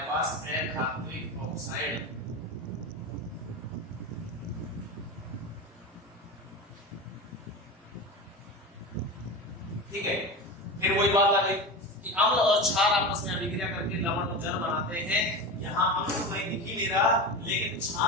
पास अधात्विक ऑक्साइड। ठीक है, फिर वही बात आ गई कि अम्ल और क्षार आपस में अभिक्रिया करके लवण और जल बनाते हैं। यहाँ अम्ल तो कहीं दिख ही नहीं रहा, लेकिन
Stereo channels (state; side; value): normal; both; correlation 0.24